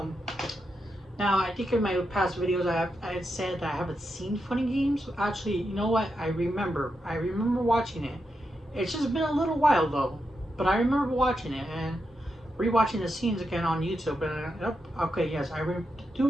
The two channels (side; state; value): both; normal; correlation 0.85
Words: I think in my past videos I had said that I haven't seen Funny Games. Actually, you know what? I remember watching it. It's just been a little while though. But I remember watching it and rewatching the scenes again on YouTube. And okay, yes,